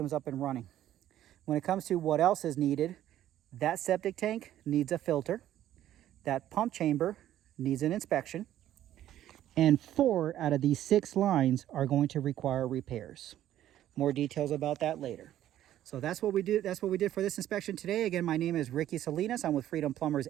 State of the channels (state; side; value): quieter; left; 12.4 dB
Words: up and running. When it comes to what else is needed, that septic tank needs a filter. That pump chamber needs an inspection. And 4 out of these 6 lines are going to require repairs. More details about that later. So that's what we did. That's what we did for this inspection today. Again, my name is Ricky Salinas. I'm with Freedom Plumbers